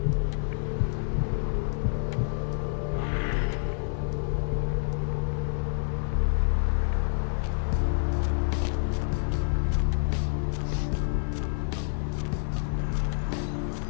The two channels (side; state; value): right; silent; 59 dB below the other